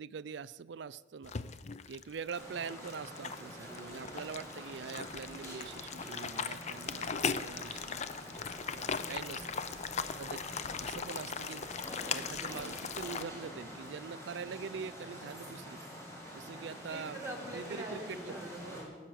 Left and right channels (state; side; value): normal; both; correlation 0.02